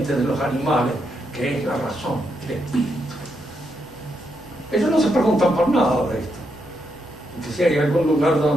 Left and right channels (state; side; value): normal; both; correlation 0.81